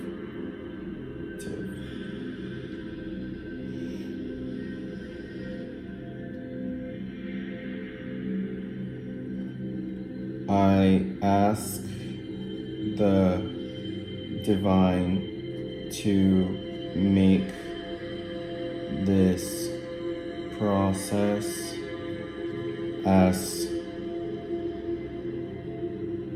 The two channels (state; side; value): identical; both; correlation 1.00